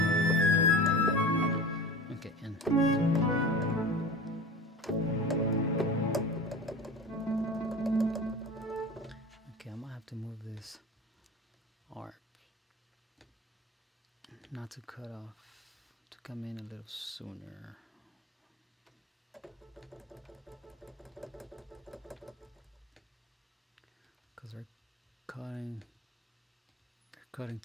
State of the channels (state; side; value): normal; both; correlation 0.33